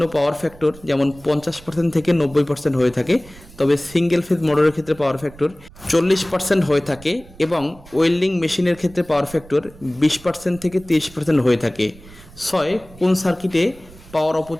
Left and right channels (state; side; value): noise; right; rumble, 21 dB below the sound